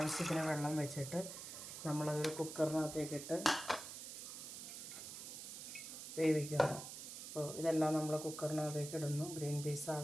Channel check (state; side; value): noise; right; hiss, 9 dB below the sound